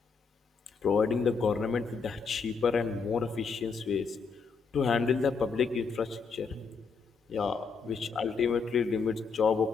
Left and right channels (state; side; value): quieter; right; 5.1 dB